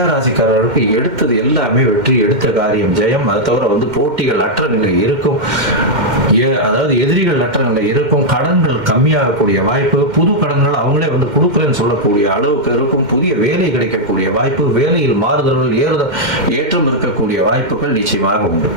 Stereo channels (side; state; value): left; late; 2.1 ms